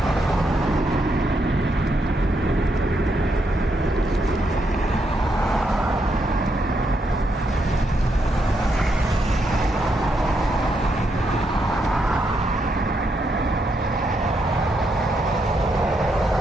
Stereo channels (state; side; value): normal; both; correlation 0.79